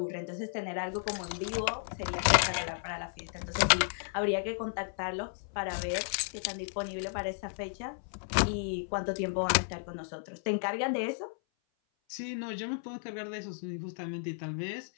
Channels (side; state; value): right; silent; 55 dB below the other